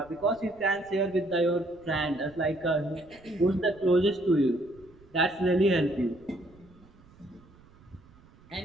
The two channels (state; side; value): noise; right; rumble, 26 dB below the sound